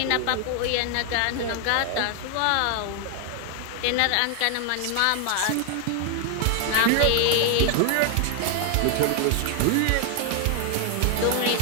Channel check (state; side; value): different; both; correlation 0.00